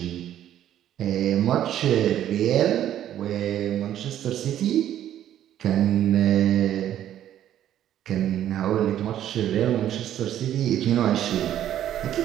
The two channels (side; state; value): left; quieter; 11.4 dB